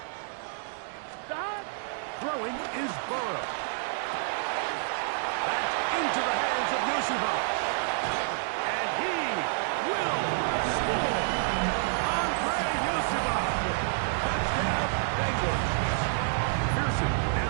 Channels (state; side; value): silent; left; digital silence